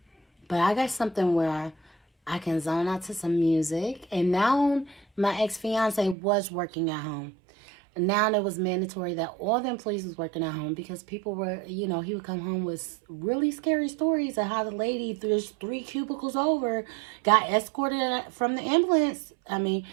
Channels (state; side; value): drops out; left; at 6.2 s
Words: But I got something where I can zone out to some music. And now my ex-fiance was working at home. Now it was mandatory that all the employees was working at home because people were, he would come home with really scary stories of how the lady, there's 3 cubicles over, got escorted from the ambulance.